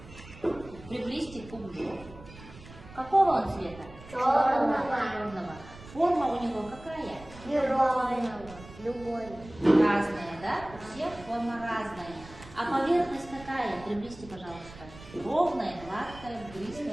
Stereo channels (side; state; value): right; noise; rumble, 18 dB below the sound